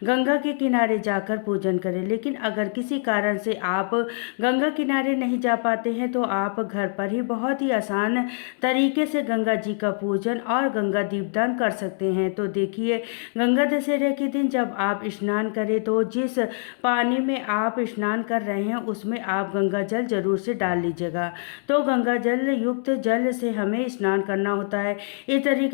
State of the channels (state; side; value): silent; right; 62 dB below the other